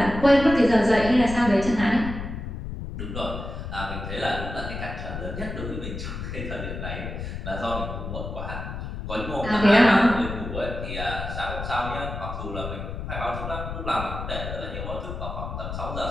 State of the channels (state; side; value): noise; left; rumble, 7 dB below the sound